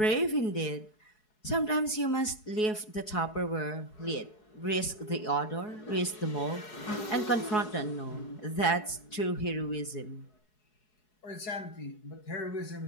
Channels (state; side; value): late; right; 4.7 ms